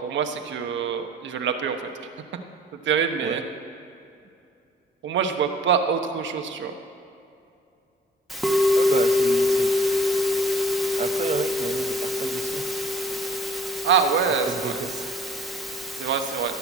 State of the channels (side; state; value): both; normal; correlation 0.52